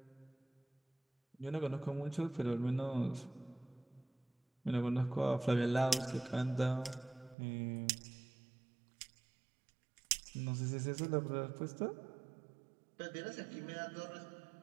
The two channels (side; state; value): left; drops out; at 7.4 s